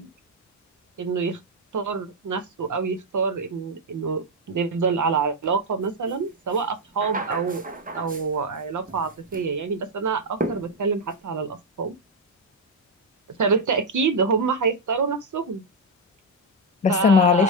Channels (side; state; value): both; normal; correlation 0.02